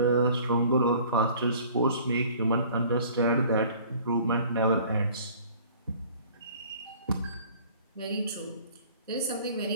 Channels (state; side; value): inverted; both; correlation -0.51